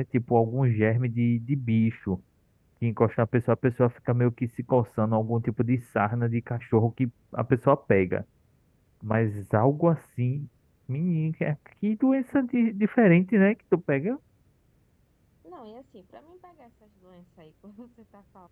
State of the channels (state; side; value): identical; both; correlation 1.00